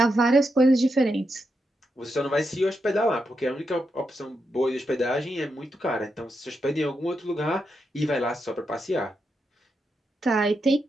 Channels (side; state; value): both; normal; correlation 0.84